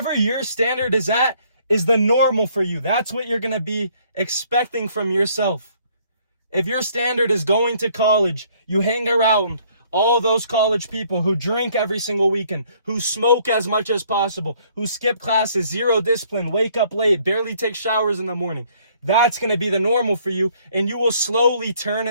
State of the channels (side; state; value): both; inverted; correlation -0.63